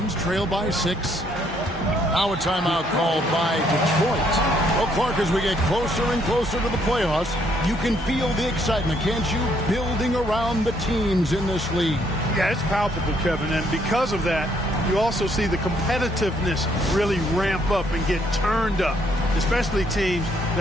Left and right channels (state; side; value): normal; both; correlation 0.69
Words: trail by 6. Now a timeout called by Detroit. Well, Clark, as we get closer and closer to the playoffs, you can feel the excitement, can't you? Building around the teams in this league. Yeah, it's palpable, Kevin, and because of that, you also see the competitiveness really ramp up and get turned up, especially teams